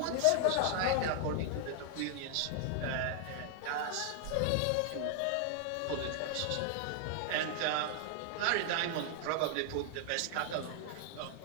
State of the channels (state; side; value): different; both; correlation 0.00